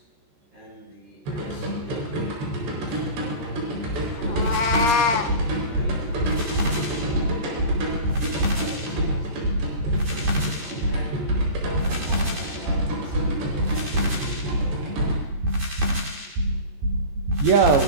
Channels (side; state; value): left; late; 13 ms